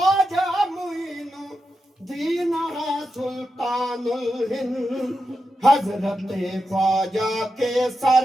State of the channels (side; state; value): both; normal; correlation 0.88